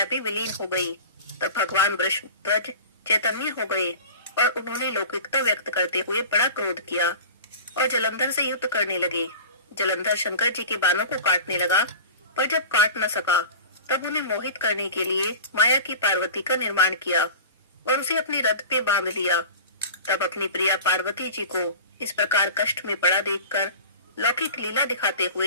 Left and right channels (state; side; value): inverted; both; correlation -0.36